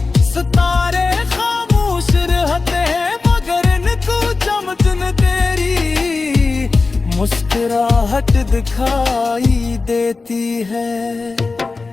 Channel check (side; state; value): right; quieter; 4.0 dB